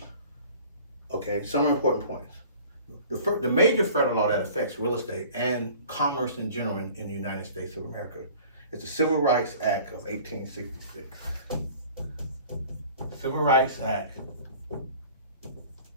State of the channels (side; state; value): both; inverted; correlation -0.47